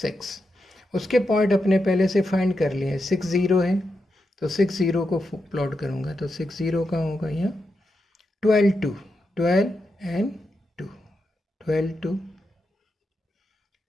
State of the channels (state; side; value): normal; both; correlation 0.86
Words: उसके पॉइंट अपने पहले से फाइंड कर लिए हैं। 6 0 है तो 6 0 को प्लॉट करूँगा तो 6 0 कहाँ होगा? यहाँ 12 2, 12 एंड 2, 12 2,